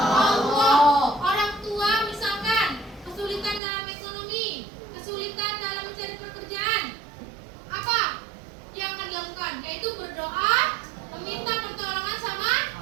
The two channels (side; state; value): left; drops out; at 3.6 s